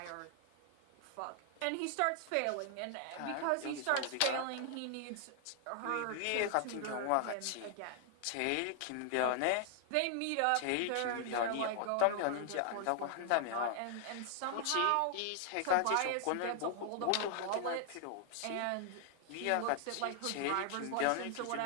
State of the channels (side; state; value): both; different; correlation 0.00